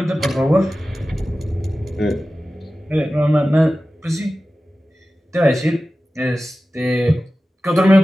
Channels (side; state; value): both; normal; correlation 0.95